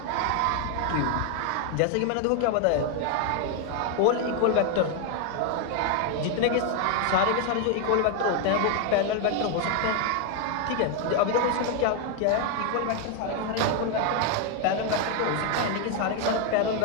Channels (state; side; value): different; both; correlation 0.01